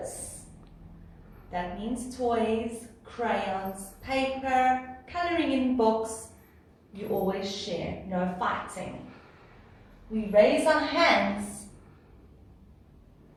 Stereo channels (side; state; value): both; identical; correlation 1.00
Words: That means toys, crayons, paper, coloring in books. You always share, no fighting. We raise our hands.